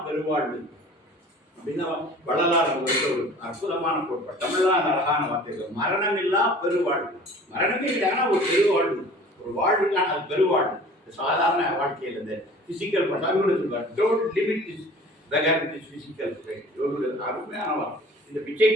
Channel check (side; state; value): both; normal; correlation 0.46